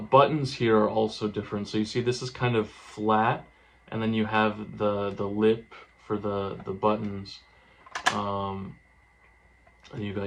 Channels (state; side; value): identical; both; correlation 1.00